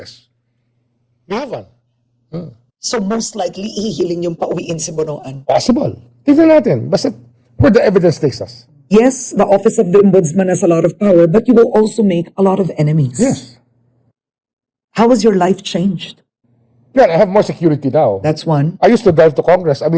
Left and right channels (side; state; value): both; identical; correlation 1.00